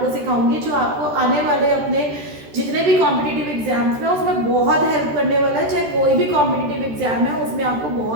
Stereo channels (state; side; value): late; left; 13 ms